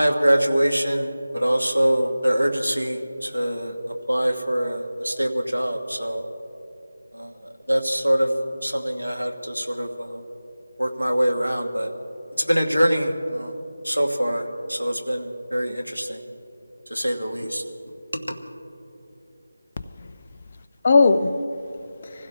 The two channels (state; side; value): inverted; both; correlation -0.96